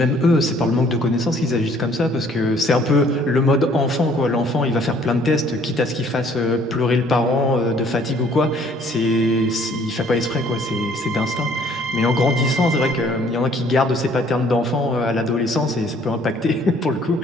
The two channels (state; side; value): normal; both; correlation 0.59